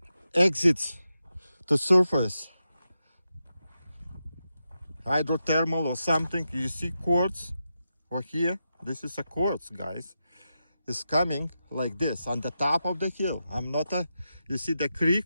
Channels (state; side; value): inverted; both; correlation -0.88